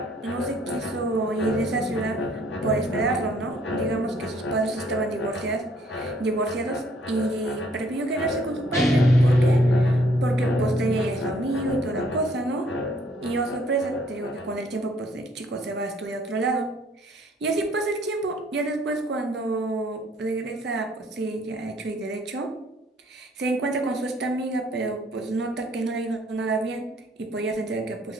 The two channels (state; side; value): normal; both; correlation 0.63